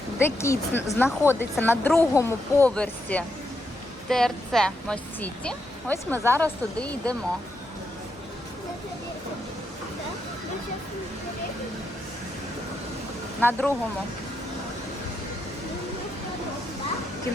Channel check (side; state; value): both; normal; correlation 0.81